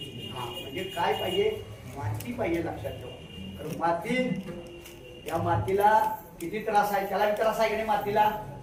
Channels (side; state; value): both; identical; correlation 1.00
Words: काय पाहिजे? माती पाहिजे. लक्षात ठेवा. माती, या मातीला किती त्रास आहे. त्याला त्रास आहे की नाही मातीला?